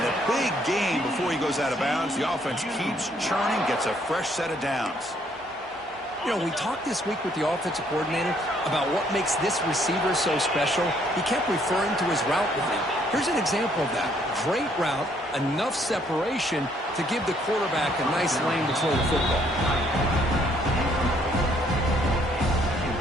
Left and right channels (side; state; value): both; normal; correlation 0.67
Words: And a big gain before he goes out of bounds. The offense keeps churning, gets a fresh set of downs. You know, we talked this week with the offensive coordinator about what makes this receiver so special. He kept referring to his route running. Here's an example of that. Great route, enough separation to give the quarterback a nice lane to throw the football.